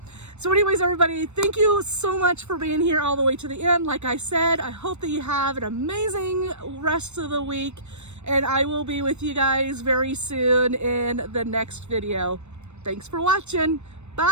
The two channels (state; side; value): late; left; 0.82 ms